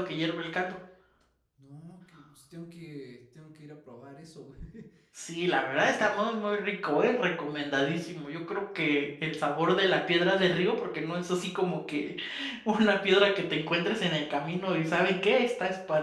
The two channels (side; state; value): both; identical; correlation 1.00